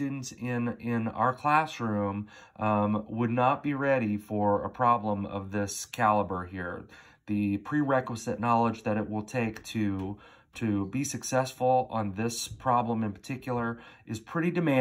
in our classroom would not be ready for a problem of this caliber here. The prerequisite knowledge that it will take to be successful on this problem in particular is pretty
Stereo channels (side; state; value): both; identical; correlation 1.00